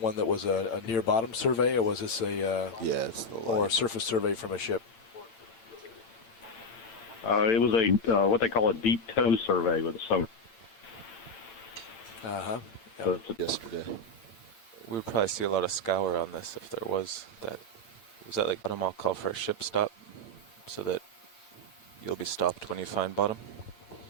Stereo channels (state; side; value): late; right; 8.9 ms